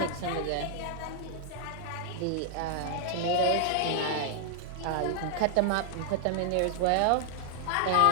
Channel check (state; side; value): different; both; correlation -0.01